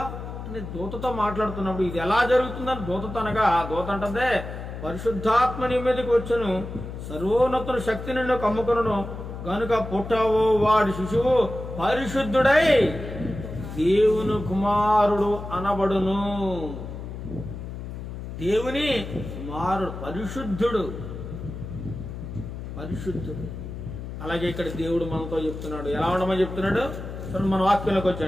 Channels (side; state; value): left; noise; hum, 9 dB below the sound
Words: అని దూతతో మాట్లాడుతున్నప్పుడు ఇది ఎలా జరుగుతుందని దూతతో అనగా, దూత అంటదే పరిశుద్ధాత్మ నీ మీదకి వచ్చును, సర్వోన్నతుల శక్తి నిన్ను కమ్ముకును, గనుక పుట్టవు వాడి శిశువు పరిశుద్ధుడై దేవుని కుమారుడు అనబడును. దేవుని కుమారుడు పరిశుద్ధుడు, పరిశుద్ధుడు. అలాగే ఇక్కడ దేవుడు మనతో చెప్తున్నాడు. ఎలా ఉండమని చెప్తున్నాడు చూడండి. మన వాక్యంలోకి